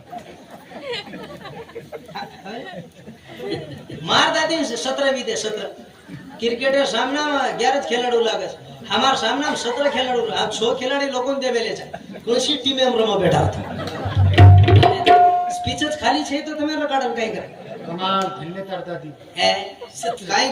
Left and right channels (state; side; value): identical; both; correlation 1.00